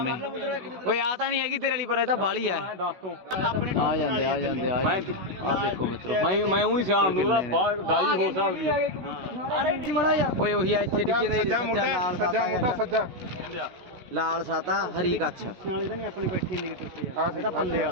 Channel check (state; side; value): late; left; 16 ms